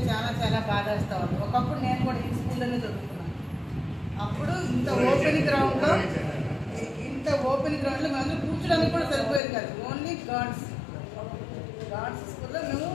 చాలా చాలా బాధ వస్తూ ఉంది. ఒకప్పుడు నేను కూడా ఈ స్కూల్లోనే చదువుకున్నాను. అప్పుడు ఇంత ఓపెన్ గ్రౌండ్లో మేము కూర్చోడానికి కూడా సరిపోయేది కాదు. ఓన్లీ గార్డ్స్ స్కూల్లో మేము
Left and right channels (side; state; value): right; drops out; at 9.4 s